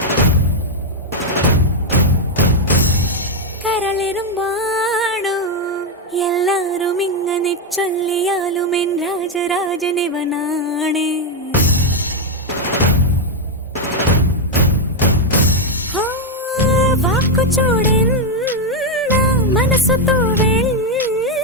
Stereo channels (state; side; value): normal; both; correlation 0.02